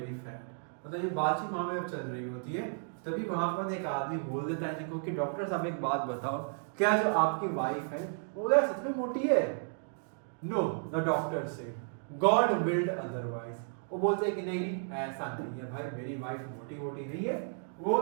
fat. मतलब ये बातचीत वहां में चल रही होती है, तभी वहां पर एक आदमी बोल देता है इनको कि डॉक्टर साहब एक बात बताओ, क्या जो आपकी वाइफ है वो क्या सच में मोटी है? No, the doctor said God willed otherwise. वो बोलते हैं कि नहीं नहीं ऐसा नहीं है भाई, मेरी वाइफ मोटी मोटी नहीं है, वो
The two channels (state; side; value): silent; left; digital silence